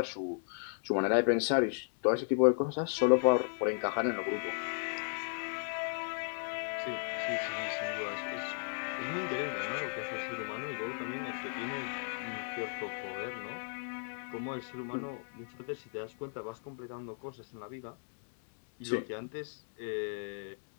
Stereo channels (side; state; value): right; silent; 54 dB below the other